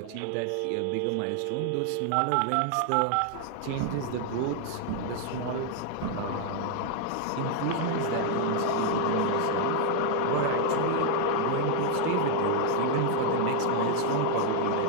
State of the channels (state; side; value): different; both; correlation 0.00